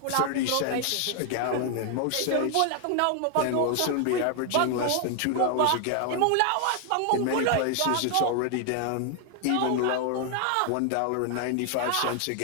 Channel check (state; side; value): different; both; correlation 0.00